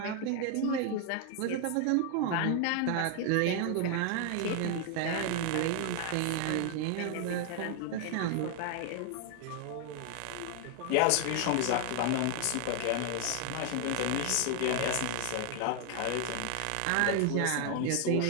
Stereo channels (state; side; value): different; both; correlation 0.00